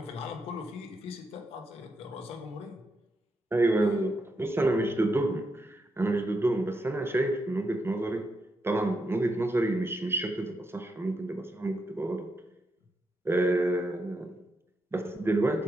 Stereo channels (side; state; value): both; normal; correlation 0.82